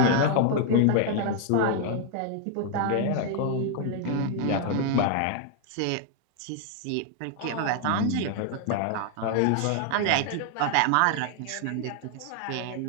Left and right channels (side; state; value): both; different; correlation 0.00